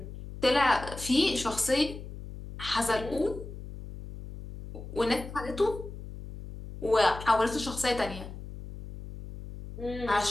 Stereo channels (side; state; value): left; noise; hum, 11 dB below the sound